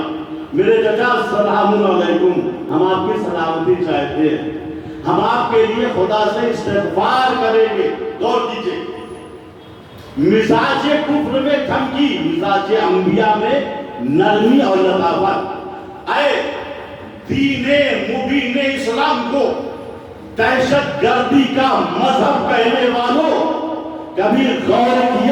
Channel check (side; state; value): both; identical; correlation 1.00